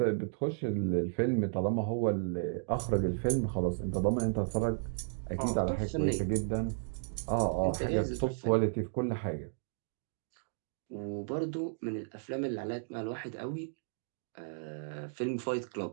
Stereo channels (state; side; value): silent; left; digital silence